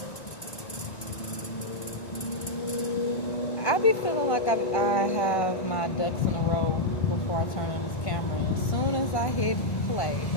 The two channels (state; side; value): late; right; 1.5 ms